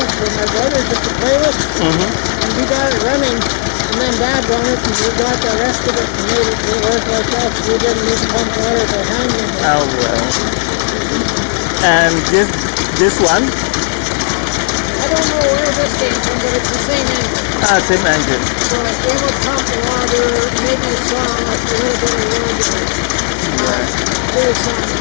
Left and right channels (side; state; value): right; silent; 55 dB below the other